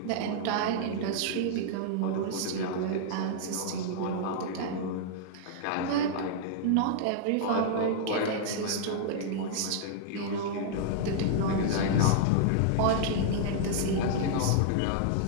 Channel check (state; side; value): different; both; correlation -0.01